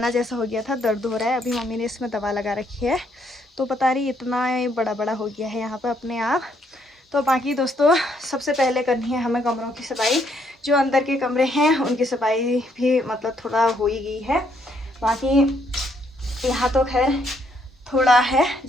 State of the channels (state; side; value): normal; both; correlation 0.71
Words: जैसा हो गया था, दर्द हो रहा है। अभी मम्मी ने इसमें दवा लगा रखी है, तो पता नहीं इतना बड़ा बड़ा हो गया है यहाँ पर अपने आप। तो बाकी दोस्तों सबसे पहले करनी है हमें कमरों की सफाई। जो अंदर के कमरे हैं उनकी सफाई भी मतलब थोड़ा हो ही गई है। बाकी यहाँ तो खैर थोड़ा है,